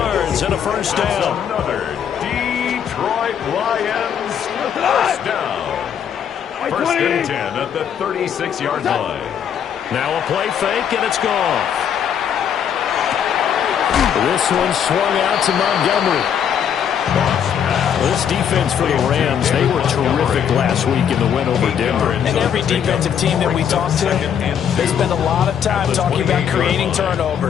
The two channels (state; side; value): quieter; right; 8.5 dB